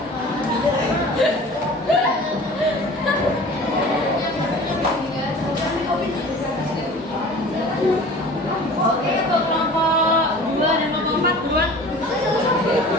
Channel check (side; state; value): both; normal; correlation 0.42